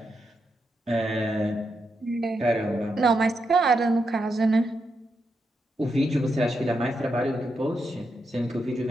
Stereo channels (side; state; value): both; normal; correlation 0.84